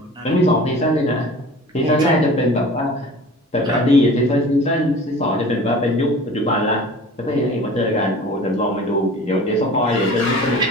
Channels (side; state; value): both; normal; correlation 0.42